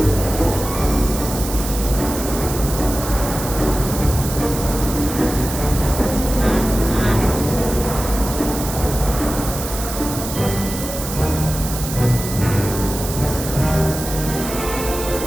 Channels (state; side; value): noise; right; hiss, 8 dB below the sound